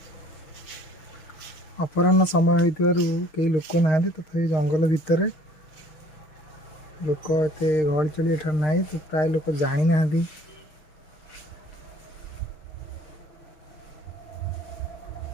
अपराह्न समय होइतिबारु कई लोक ना तथा जंगल भितर लोक एत गहली चली एठार ना तो प्राय लोक जानी ना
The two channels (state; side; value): late; right; 6.6 ms